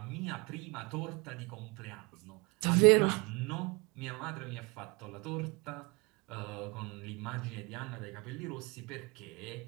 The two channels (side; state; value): left; quieter; 28.1 dB